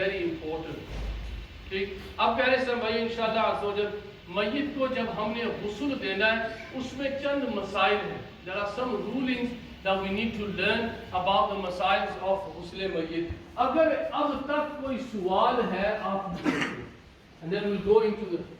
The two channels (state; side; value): identical; both; correlation 1.00